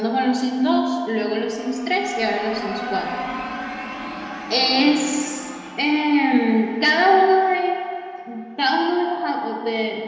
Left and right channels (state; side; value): identical; both; correlation 1.00